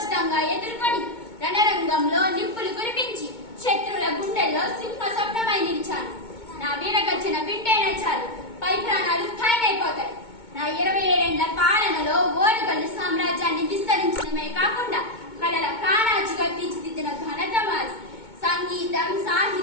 ఎదుర్కొని రణరంగంలో నిప్పులు కురిపించి శత్రువుల గుండెల్లో సింహ స్వప్నమై నిలిచాను. నా వీరగర్జన వింటేనే చాలు పై ప్రాణాలు ఖాయమైపోతాయి. నా 27 పాలనలో ఓరుగల్లు సామ్రాజ్యాన్ని విస్తరించడమే కాకుండా కళల కానాచిగా తీర్చిదిద్దిన ఘనత మాది. సంగీతం,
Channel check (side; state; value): right; late; 2.2 ms